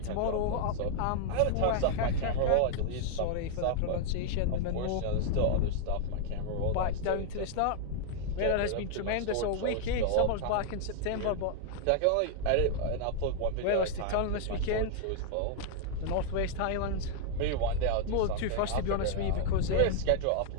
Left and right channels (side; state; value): both; different; correlation 0.00